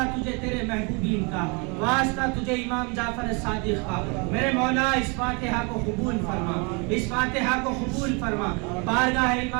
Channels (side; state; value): left; quieter; 31.9 dB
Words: تجھے تیرے محبوبین کا، واسطہ تجھے امام جعفر صادق کا. میرے مولا اس فاتحہ کو قبول فرما، اس فاتحہ کو قبول فرما. بارگاہ